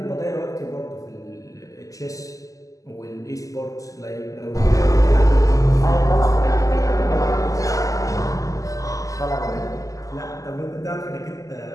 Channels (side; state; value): right; late; 0.16 ms